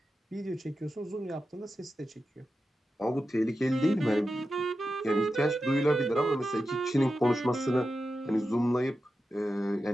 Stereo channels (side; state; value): both; normal; correlation 0.91